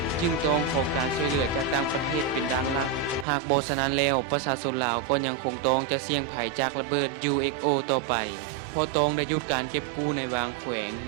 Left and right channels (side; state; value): left; drops out; at 3.2 s